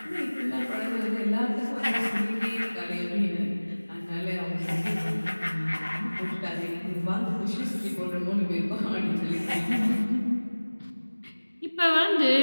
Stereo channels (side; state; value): both; inverted; correlation -1.00